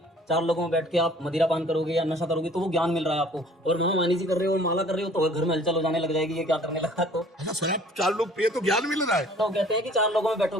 4 लोगों में बैठ के आप मदिरा पान करोगे या नशा करोगे तो वो ज्ञान मिल रहा है आपको, और मानी जी कर रहे हो, माला कर रहे हो तो घर में हलचल हो जाने लग जाएगी, ये क्या करने लगा। तो अच्छा शराब 4 लोग पिए तो ज्ञान मिल रहा है? तो कहते हैं कि 4 लोगों में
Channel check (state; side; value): normal; both; correlation 0.53